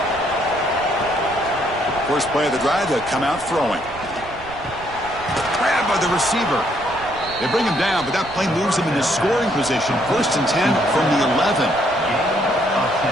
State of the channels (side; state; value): right; noise; rumble, 18 dB below the sound